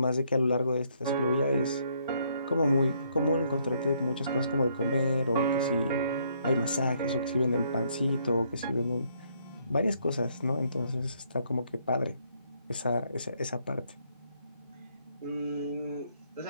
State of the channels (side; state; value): both; inverted; correlation -0.69